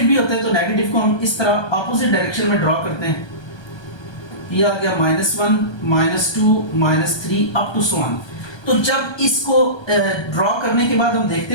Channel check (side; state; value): right; late; 1.2 ms